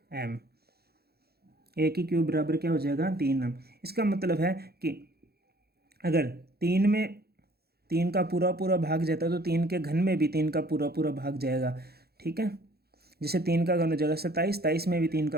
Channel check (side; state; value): left; late; 0.46 ms